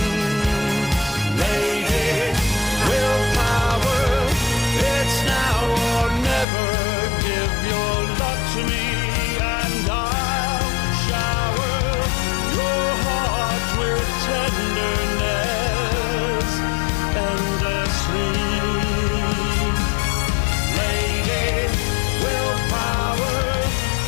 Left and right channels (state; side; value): drops out; right; at 6.5 s